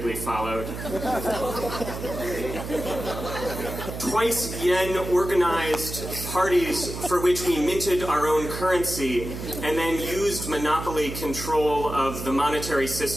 followed. Twice, Yen organized parties for which we minted our own currency and then used monopoly control of the monetary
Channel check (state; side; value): noise; right; hum, 8 dB below the sound